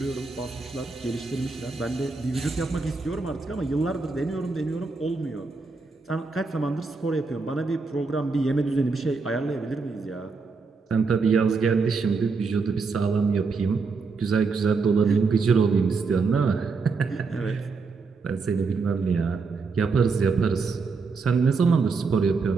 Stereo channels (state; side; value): quieter; left; 4.5 dB